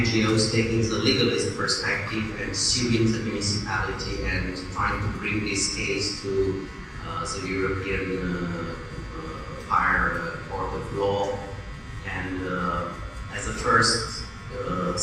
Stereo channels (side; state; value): both; identical; correlation 1.00